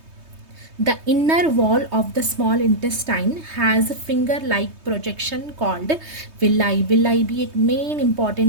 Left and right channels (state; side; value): late; left; 3.2 ms